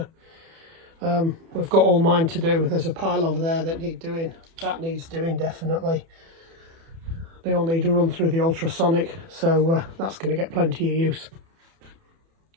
We've got all mine to do. There's a pile over there that need doing. That needs doing definitely. They all need to run through the ultrasonic, so that's going to get plenty of use.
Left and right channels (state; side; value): late; left; 30 ms